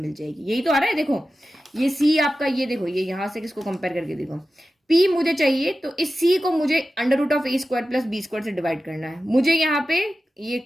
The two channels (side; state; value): both; normal; correlation 0.94